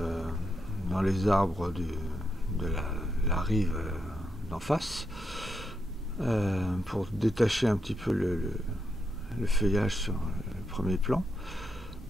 dans les arbres de la rive d'en face pour détacher un petit peu le feuillage sur le premier plan.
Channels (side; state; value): both; normal; correlation 0.83